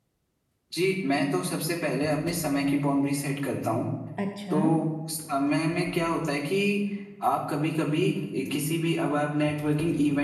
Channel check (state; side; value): identical; both; correlation 1.00